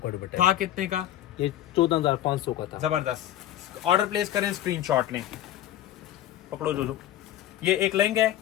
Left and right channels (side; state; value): right; quieter; 12.7 dB